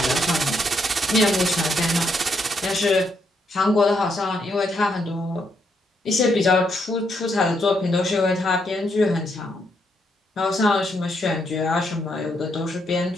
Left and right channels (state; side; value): normal; both; correlation 0.77